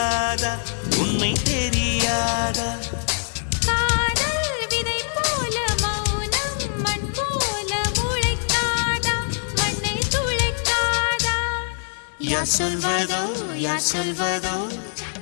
உண்மை தெரியாதா காதல் விதை போல மௌனம் மண் போல முளைக்காதா மண்ணை துளைக்காதா யார் சொல்வதோ யார் சொல்வதோ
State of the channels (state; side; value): silent; right; digital silence